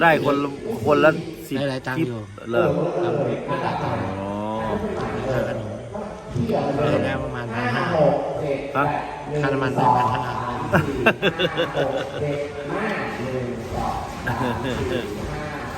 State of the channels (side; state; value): both; identical; correlation 1.00